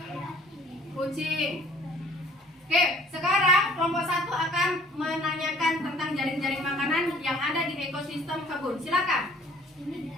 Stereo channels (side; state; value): both; normal; correlation 0.54